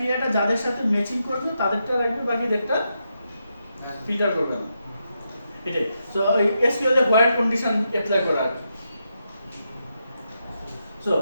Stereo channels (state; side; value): inverted; both; correlation -0.83